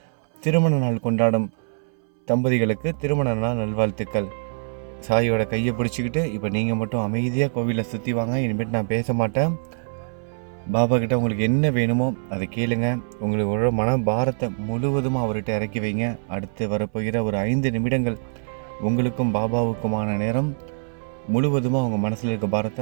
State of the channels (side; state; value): left; silent; 63 dB below the other